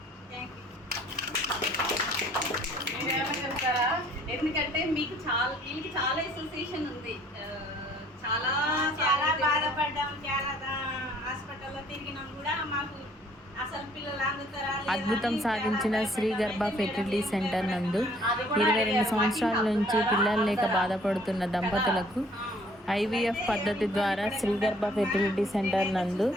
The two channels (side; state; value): both; normal; correlation 0.59